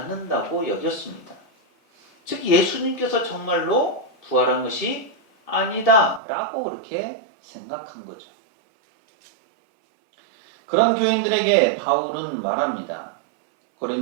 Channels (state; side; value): drops out; left; at 6.2 s